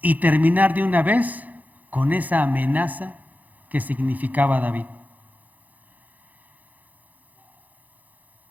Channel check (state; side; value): late; left; 0.080 ms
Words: y terminar de una vez con esa amenaza que significaba David.